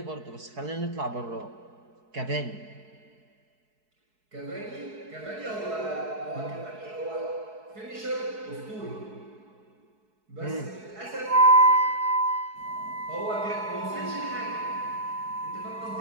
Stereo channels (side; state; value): left; late; 4.7 ms